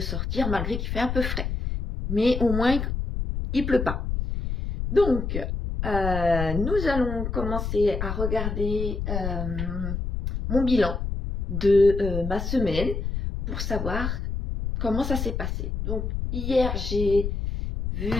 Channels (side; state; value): left; noise; rumble, 3 dB below the sound